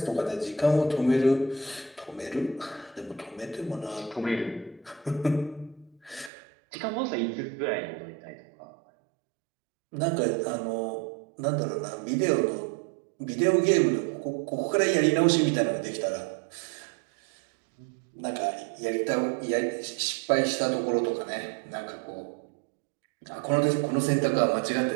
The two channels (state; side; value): drops out; left; at 6.3 s